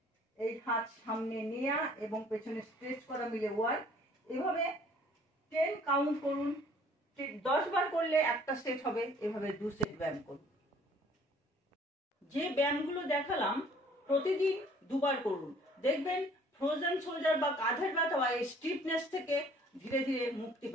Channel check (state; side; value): normal; both; correlation 0.56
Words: এই হাত সামনে নেওয়া এবং পেছনে স্ট্রেচ করা মিলে 1। এভাবে 10 কাউন্ট করুন, 10 বার করলে একটা সেট হবে, এভাবে 2 সেট ব্যায়াম করুন। যে ব্যায়ামগুলো দেখালাম প্রতিদিন 2 বার করুন, দেখবেন ফ্রোজেন শোল্ডার বা কাঁধের ব্যথা বা এই স্টিফনেস থেকে ধীরে ধীরে মুক্তি